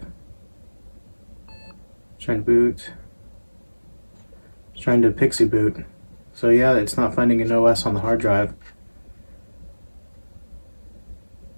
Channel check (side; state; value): both; inverted; correlation -1.00